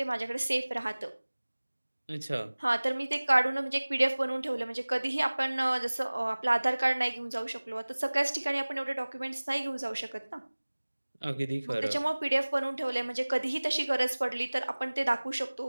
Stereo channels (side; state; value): both; inverted; correlation -1.00